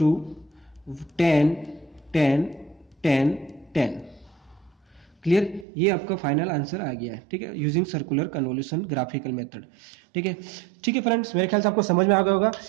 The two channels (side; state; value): left; drops out; at 5.7 s